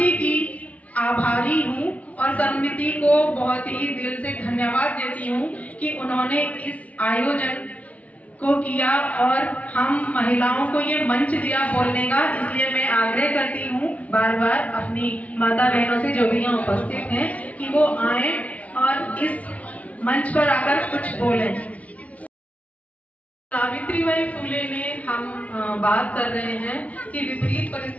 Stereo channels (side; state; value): right; late; 0.068 ms